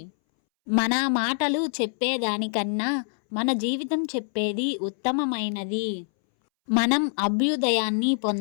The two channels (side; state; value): right; silent; 62 dB below the other